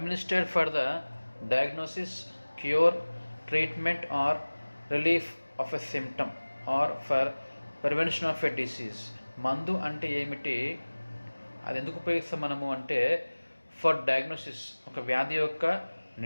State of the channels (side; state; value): both; inverted; correlation -1.00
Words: for the diagnosis, cure, treatment or relief of a symptom or for prevention of a disease. మందు అంటే ఏమిటి, అది ఎందుకు ఉపయోగిస్తాం మనము అంటే ఫర్ డయాగ్నోసిస్, ఒక వ్యాధి యొక్క